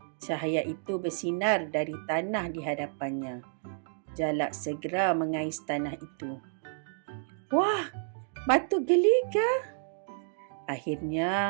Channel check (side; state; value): left; silent; digital silence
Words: Cahaya itu bersinar dari tanah di hadapannya. Jalak segera mengais tanah itu. Wah, batu geliga!